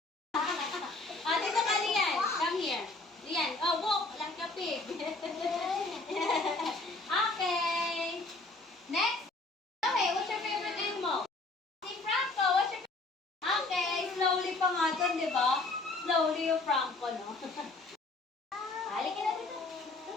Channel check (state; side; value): quieter; right; 3.2 dB